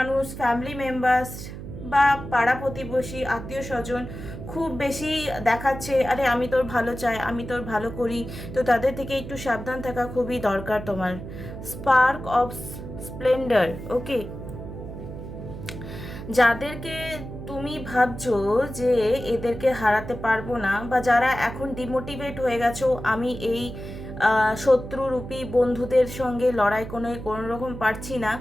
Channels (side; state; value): right; noise; hum, 10 dB below the sound